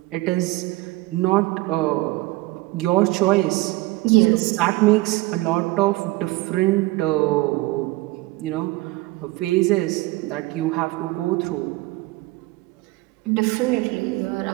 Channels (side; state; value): left; quieter; 20.4 dB